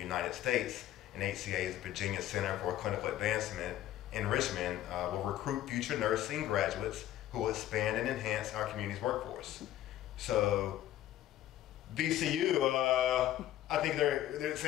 States, and HCA's Virginia Center for Clinical Advancement in Richmond will recruit future nursing graduates who will expand and enhance our community's workforce. So VCU, I think it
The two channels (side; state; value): right; quieter; 13.0 dB